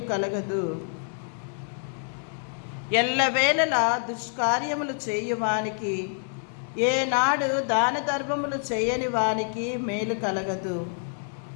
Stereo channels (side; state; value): right; silent; 58 dB below the other